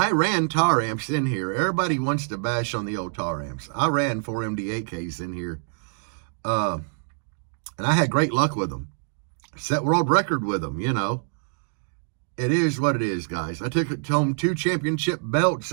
ran tar amps in here. Everybody wants to bash on the old tar amps. I ran 4 MD8Ks in here. And I had great luck with them. Set world record with them, you know. it is what it is, guys. I took home 2 championship belts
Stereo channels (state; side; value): silent; left; digital silence